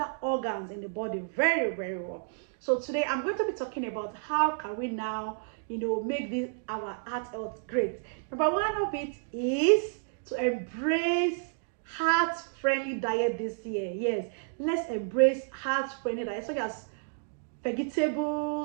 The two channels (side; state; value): left; silent; digital silence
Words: organs in the body very, very well. So today I'm going to be talking about how can we now, make this our heart health great. Number one of it is to embrace heart-friendly diet this year. Yes, let's embrace heart-friendly diet such as